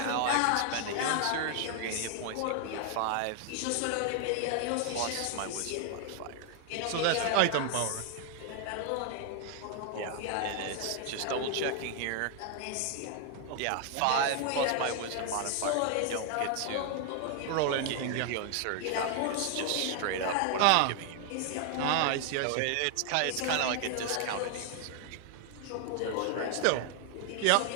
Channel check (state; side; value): different; both; correlation 0.00